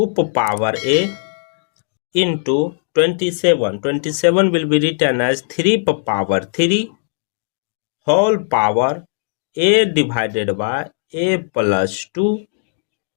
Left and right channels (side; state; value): right; silent; digital silence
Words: power a into 27. 27 will be written as 3 power 3 whole power a divided by a plus 2